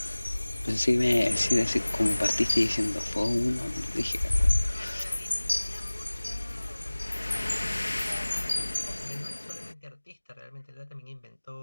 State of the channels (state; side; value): inverted; both; correlation -1.00